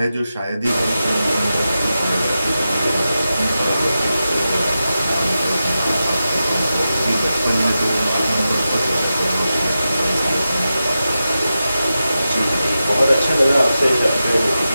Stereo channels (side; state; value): both; inverted; correlation -0.91